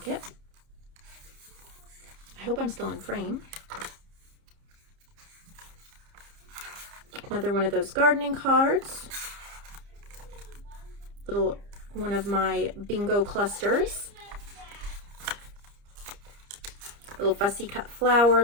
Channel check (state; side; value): late; left; 30 ms